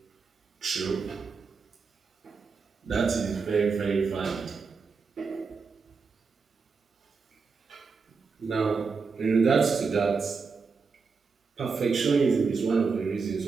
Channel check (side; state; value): left; quieter; 5.0 dB